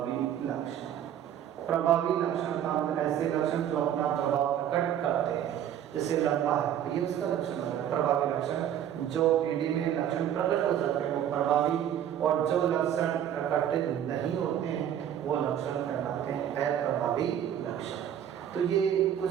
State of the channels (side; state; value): left; quieter; 10.2 dB